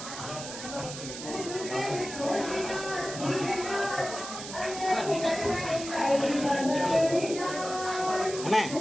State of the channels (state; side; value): noise; right; hiss, 9 dB below the sound